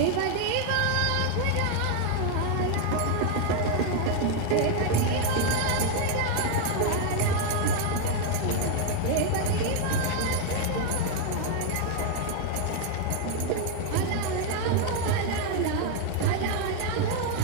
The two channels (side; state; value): both; different; correlation 0.01